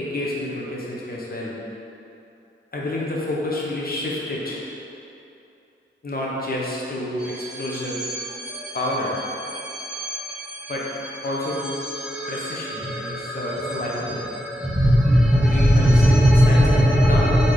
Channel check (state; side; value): normal; both; correlation 0.82